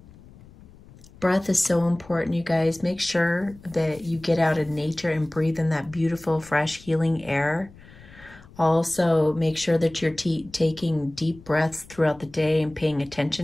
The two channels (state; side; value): noise; left; rumble, 22 dB below the sound